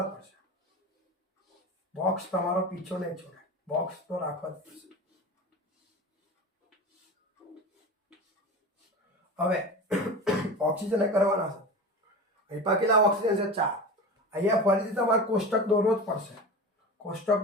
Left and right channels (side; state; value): both; normal; correlation 0.30